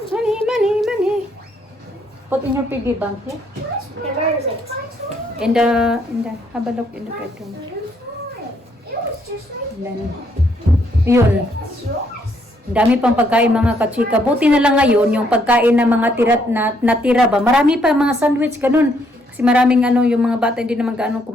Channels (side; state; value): both; normal; correlation 0.71